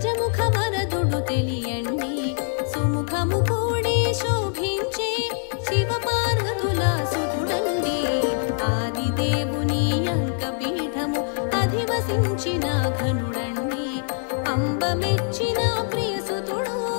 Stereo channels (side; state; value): right; silent; digital silence